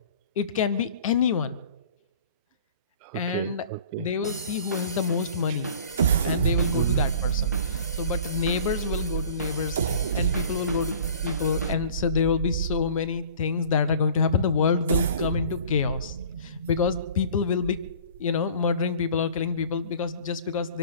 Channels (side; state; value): both; inverted; correlation -0.46